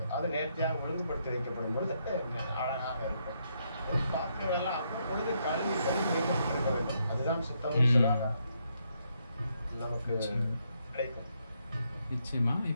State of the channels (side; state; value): both; inverted; correlation -0.77